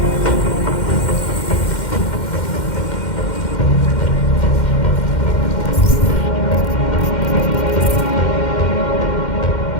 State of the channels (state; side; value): late; right; 2.1 ms